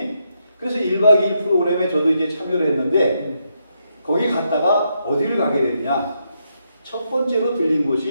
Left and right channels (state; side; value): inverted; both; correlation -0.80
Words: 그래서 1박 2일 프로그램에 저도 이제 참여를 했는데 거기 갔다가 어디를 가게 됐냐. 첫 번째로 들린